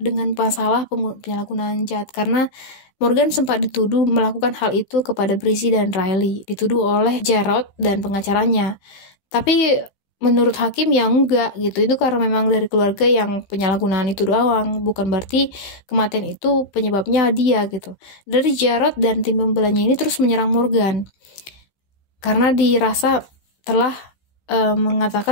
masalah penyalahgunaan jahat, karena Morgan sempat dituduh melakukan hal itu kepada Brizzy dan Riley, dituduh oleh Jarrod dan pengacaranya. Tapi menurut hakim ya enggak gitu, itu karena memang dari keluarga yang penyalahgunaan itu doang, bukan berarti kematian itu penyebabnya dia gitu. Dari Jarrod dan tim pembelanya ini terus menyerang Morgan karena dirasa telah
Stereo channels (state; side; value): late; right; 15 ms